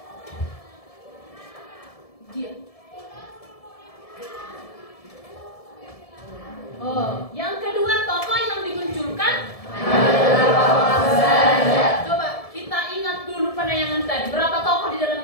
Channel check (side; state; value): right; late; 1.7 ms